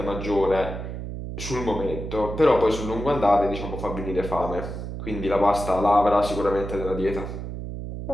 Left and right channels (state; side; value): noise; right; hum, 7 dB below the sound